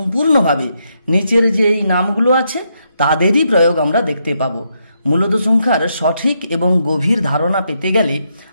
নিচের যে এই নামগুলো আছে তাদেরই প্রয়োগ আমরা দেখতে পাবো। মূলদ সংখ্যার সঠিক এবং গভীর ধারণা পেতে গেলে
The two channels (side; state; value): both; inverted; correlation -0.79